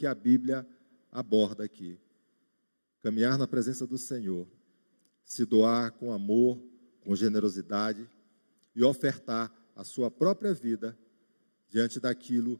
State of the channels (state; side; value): inverted; both; correlation -1.00